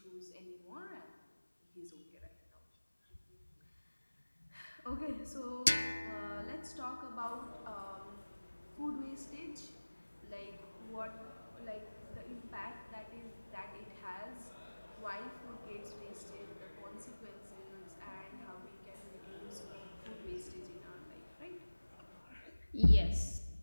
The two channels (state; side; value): inverted; both; correlation -1.00